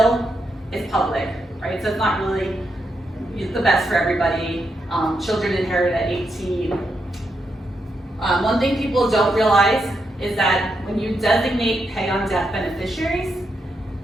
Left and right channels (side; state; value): both; normal; correlation 0.82